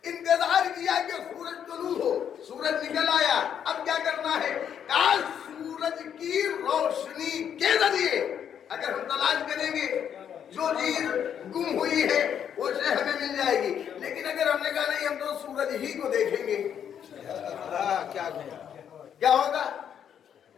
انتظار کیا کہ سورج طلوع ہو، سورج نکل آیا، اب کیا کرنا ہے؟ کاش سورج کی روشنی کے ذریعے اگر ہم تلاش کریں گے جو چیز گم ہوئی ہے وہ شے ہمیں مل جائے گی۔ لیکن اگر ہم نے کہا نہیں ہم تو سورج ہی کو دیکھیں گے، کیا ہوگا؟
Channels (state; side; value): quieter; right; 8.7 dB